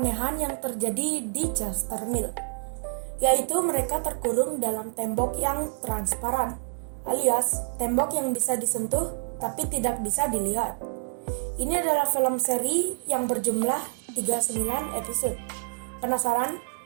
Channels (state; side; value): silent; left; digital silence